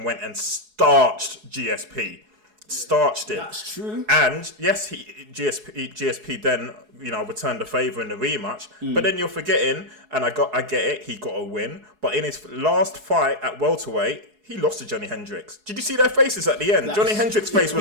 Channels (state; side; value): late; left; 4.7 ms